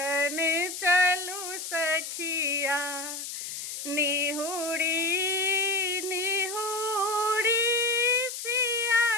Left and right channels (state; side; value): noise; left; hiss, 7 dB below the sound